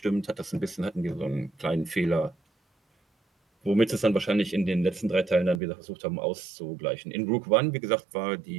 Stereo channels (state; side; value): drops out; left; at 5.6 s